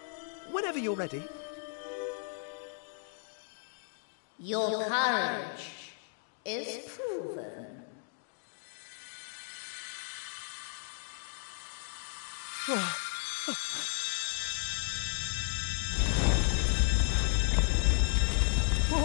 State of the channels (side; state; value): right; silent; 55 dB below the other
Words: Whenever you're ready. Your courage is proven.